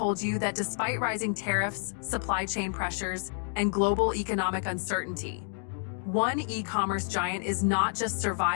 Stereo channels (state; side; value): silent; right; 58 dB below the other